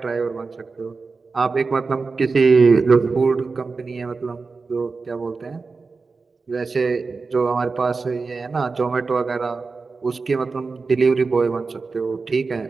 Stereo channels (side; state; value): left; quieter; 4.3 dB